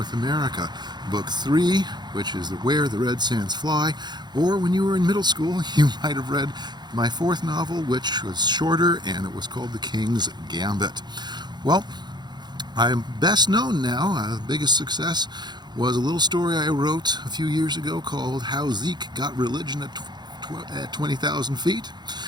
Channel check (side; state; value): left; late; 0.21 ms